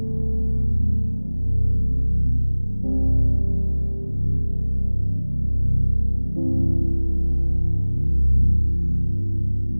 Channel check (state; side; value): inverted; both; correlation -1.00